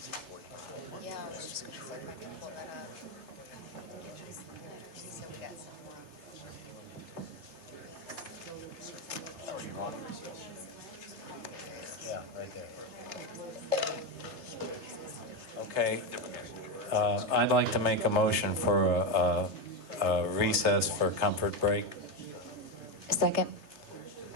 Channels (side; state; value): left; late; 3.3 ms